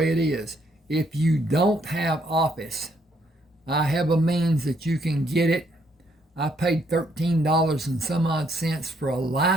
it is. If you don't have Office, I have a means that you can get it. I paid $13 and some odd cents for a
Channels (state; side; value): normal; both; correlation 0.71